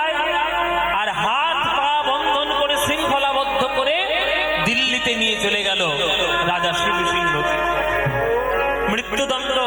আর হাত পা বন্ধন করে শৃঙ্খলাবদ্ধ করে দিল্লিতে নিয়ে চলে গেল রাজা শিব সিংহকে। মৃত্যুদণ্ড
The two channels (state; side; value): identical; both; correlation 1.00